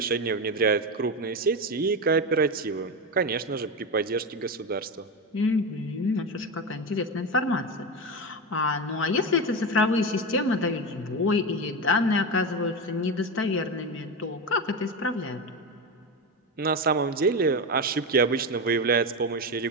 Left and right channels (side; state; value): both; normal; correlation 0.17